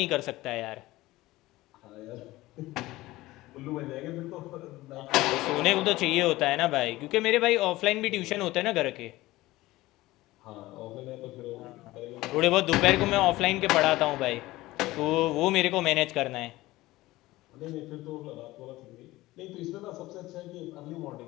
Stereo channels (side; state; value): right; quieter; 18.2 dB